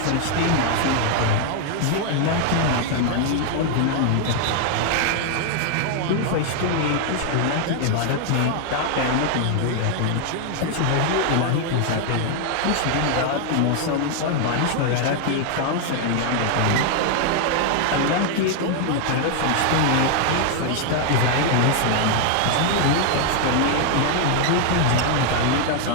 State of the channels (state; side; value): different; both; correlation 0.00